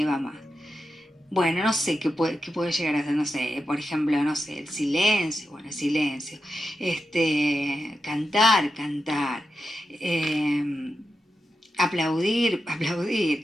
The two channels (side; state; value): both; normal; correlation 0.89